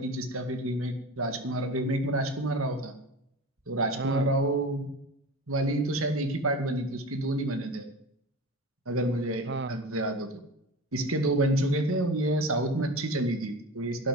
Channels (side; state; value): both; normal; correlation 0.32